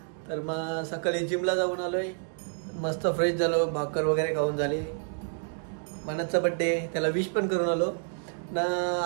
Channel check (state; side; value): silent; left; digital silence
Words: तर मग सकाळी जिमला जाऊन आलोय, मस्त फ्रेश झालो, भाकर वगैरे खाऊन झाली. मनतचा बड्डे, त्याला विश पण करून आलो ना.